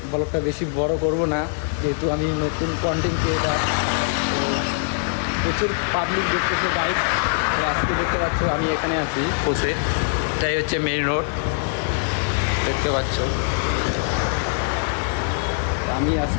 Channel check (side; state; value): right; silent; digital silence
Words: ব্লগটা বেশি বড় করব না, যেহেতু আমি নতুন কন্টেন্ট ক্রিয়েটার। তো প্রচুর পাবলিক দেখতেছে গাইড। তো আজকে দেখতে পাচ্ছ আমি এখানে আছি বসে, এটাই হচ্ছে মেইন রোড, দেখতে পাচ্ছ। তো আমি